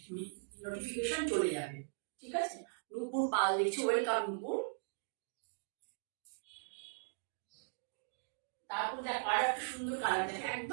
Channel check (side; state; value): left; silent; digital silence